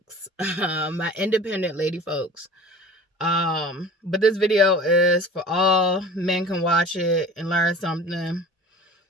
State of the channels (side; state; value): both; normal; correlation 0.40